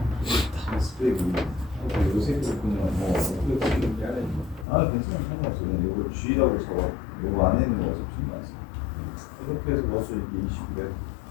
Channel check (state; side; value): drops out; right; at 4.7 s